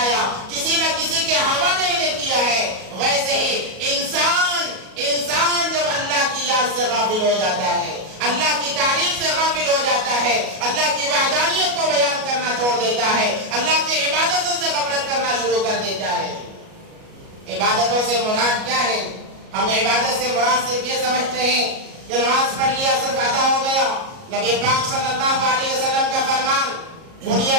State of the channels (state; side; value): late; left; 37 ms